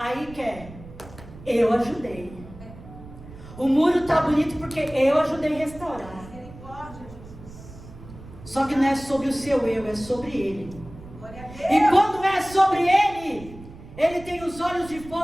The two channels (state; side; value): noise; right; rumble, 17 dB below the sound